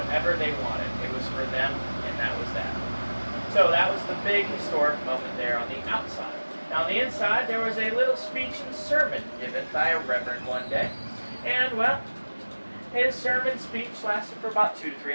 they wanted. It was for them, and that was that. So that was the big historic moment there on the outside. Now on the inside, there was a little speech and sermon given by a reverend one day. And, well, his sermon speech lasted for about 2 to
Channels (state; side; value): inverted; both; correlation -1.00